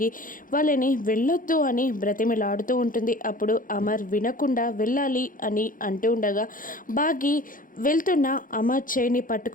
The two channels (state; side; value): late; right; 0.40 ms